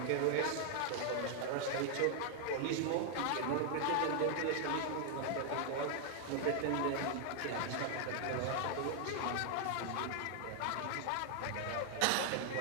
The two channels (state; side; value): different; both; correlation 0.00